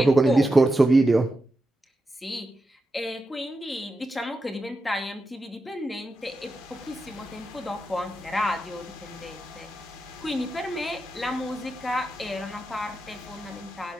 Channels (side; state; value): both; normal; correlation 0.89